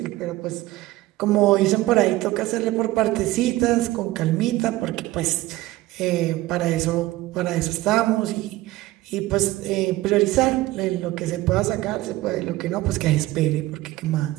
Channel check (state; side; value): quieter; left; 17.7 dB